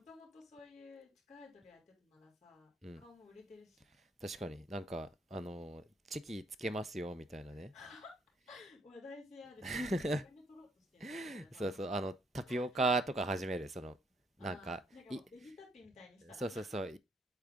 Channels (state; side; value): normal; both; correlation 0.69